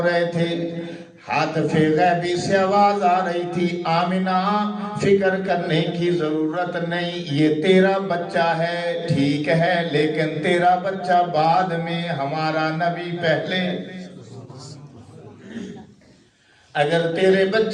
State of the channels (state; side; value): identical; both; correlation 1.00